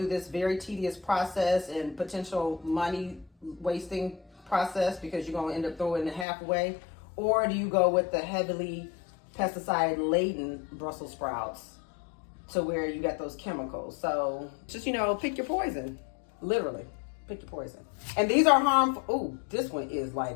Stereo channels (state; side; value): drops out; right; at 6.2 s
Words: this very tedious process and potential money wasting process, because you're going to end up throwing it half away? Or do you go with the heavily pesticide laden Brussels sprouts to where you got those chemicals? So just, pick your poison. Literally, pick your poison. And these are harmful. Oh, this one is like